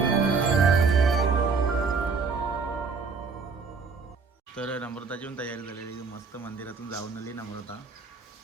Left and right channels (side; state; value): left; quieter; 4.9 dB